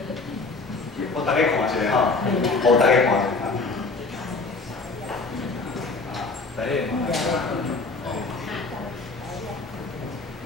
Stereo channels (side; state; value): right; quieter; 3.8 dB